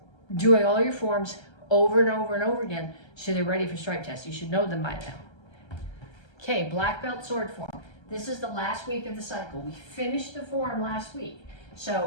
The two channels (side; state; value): right; late; 1.3 ms